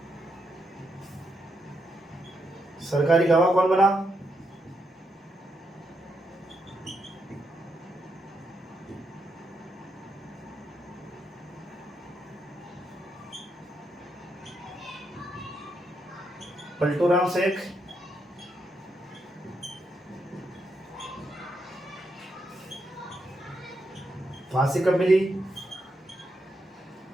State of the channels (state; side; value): normal; both; correlation 0.81